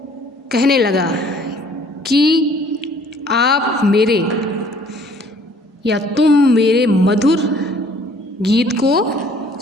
कहने लगा कि आप मेरे या तुम मेरे मधुर गीत को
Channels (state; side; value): normal; both; correlation 0.57